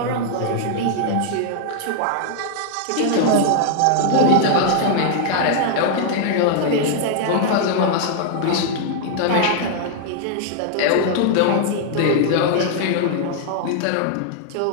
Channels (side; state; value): both; different; correlation -0.01